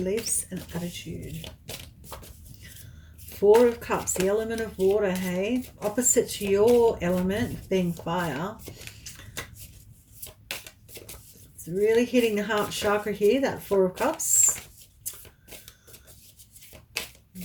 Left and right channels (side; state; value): both; identical; correlation 1.00